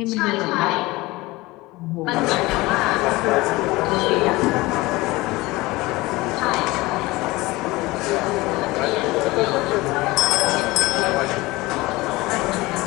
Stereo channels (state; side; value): quieter; right; 20.9 dB